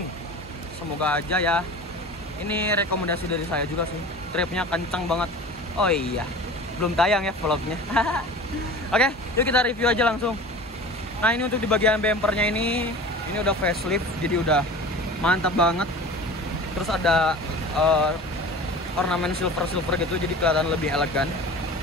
Semoga aja ya. Ini rekomendasi dari saya juga sih, tripnya kencang banget. Oh iya, belum tayang ya vlognya. Oke, yuk kita review aja langsung. Nah ini untuk di bagian bumpernya ini udah facelift, jadi udah mantap banget. Terus ada ornamen silver gitu, jadi kelihatan lebih elegan.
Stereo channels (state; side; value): normal; both; correlation 0.37